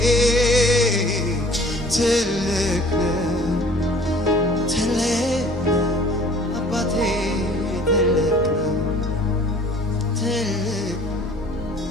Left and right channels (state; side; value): normal; both; correlation 0.51